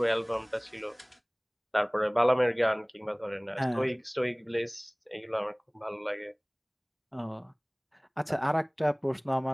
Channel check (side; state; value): both; identical; correlation 1.00